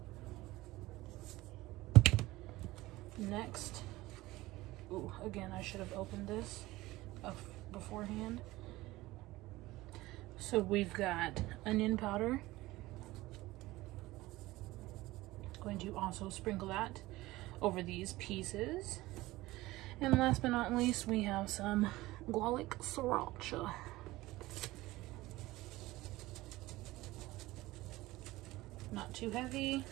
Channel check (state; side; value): quieter; left; 18.6 dB